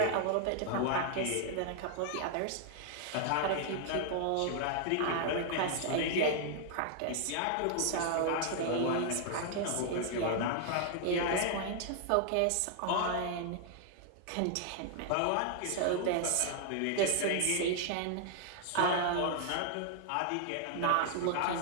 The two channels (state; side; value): different; both; correlation 0.00